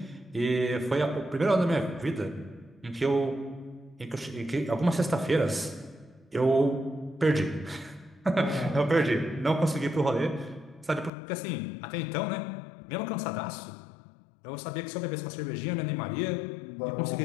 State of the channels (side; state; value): right; drops out; at 11.1 s